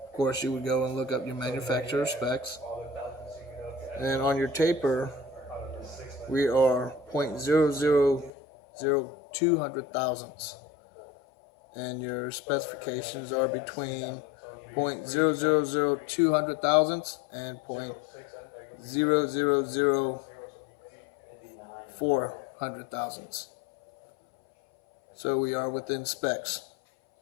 Of course, you would go and look up your manufacturer specs. And on your taper, we are 0.0002 hundred thousandths. And your specifications are between 0.0002 hundred thousandths and 0.0004 hundred thousandths. So we are within specs.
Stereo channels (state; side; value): drops out; right; at 8.3 s